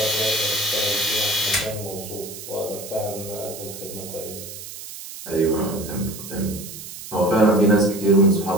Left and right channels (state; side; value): noise; right; hiss, 12 dB below the sound